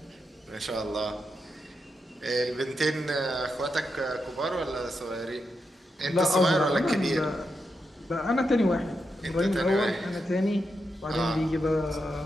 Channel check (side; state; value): both; normal; correlation 0.85